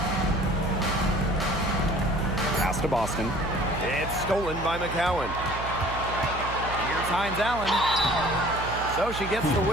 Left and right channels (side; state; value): right; noise; hum, 9 dB below the sound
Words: Pass to Boston. It's stolen by McCowan. Here's Hines Allen. So she gets the